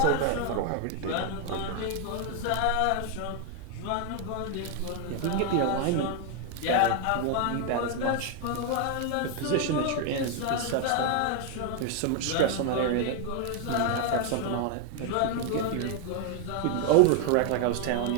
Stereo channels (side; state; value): both; different; correlation 0.01